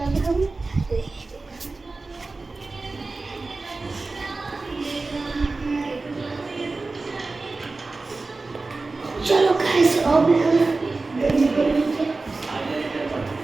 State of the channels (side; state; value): left; quieter; 3.6 dB